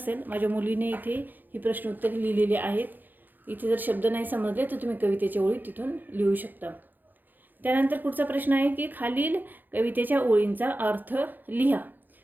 माझ्या मुलीने इथे ही प्रश्न उत्तरे लिहिलेली आहेत. इथे जर शब्द नाही समजले तर तुम्ही कवितेच्या ओळी तिथून लिहू शकता. त्यानंतर पुढचा प्रश्न आहे की खालील कवितेच्या ओळींचा अर्थ लिहा.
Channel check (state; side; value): late; left; 0.088 ms